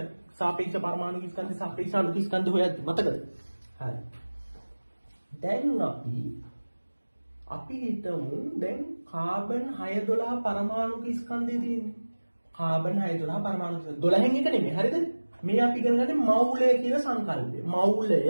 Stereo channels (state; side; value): inverted; both; correlation -1.00